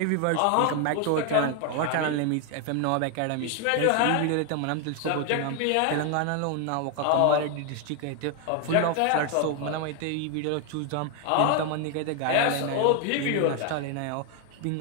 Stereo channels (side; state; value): both; different; correlation 0.01